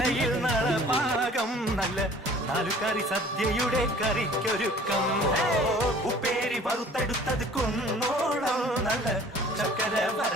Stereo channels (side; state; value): both; normal; correlation 0.50